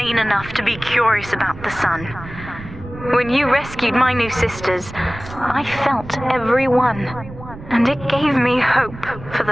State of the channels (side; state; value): right; noise; rumble, 14 dB below the sound